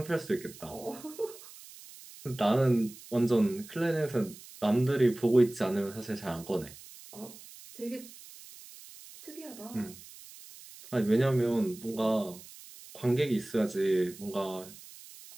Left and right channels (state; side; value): noise; right; hiss, 18 dB below the sound